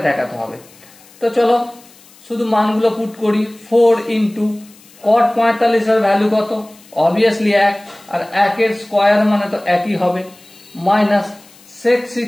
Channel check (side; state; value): left; noise; hiss, 26 dB below the sound